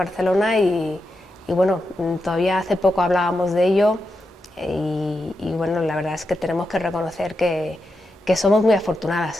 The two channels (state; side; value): normal; both; correlation 0.87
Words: y bueno, todavía hace poco hablábamos de ello y bueno, la verdad es que tenemos que reconocer que somos muy